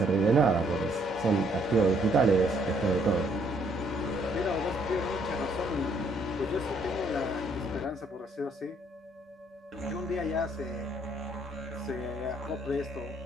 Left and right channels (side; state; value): both; normal; correlation 0.67